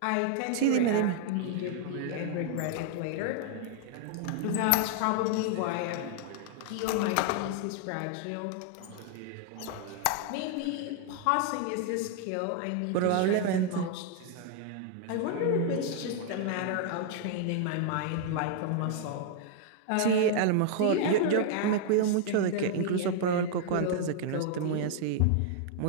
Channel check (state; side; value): different; both; correlation 0.00